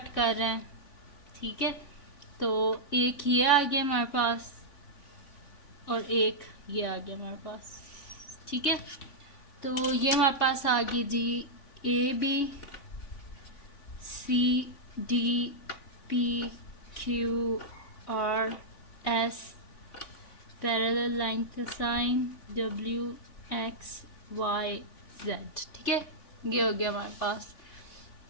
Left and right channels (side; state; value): right; late; 3.5 ms